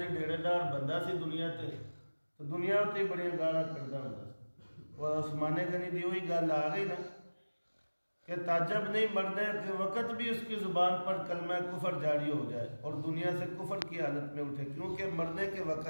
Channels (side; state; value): both; inverted; correlation -1.00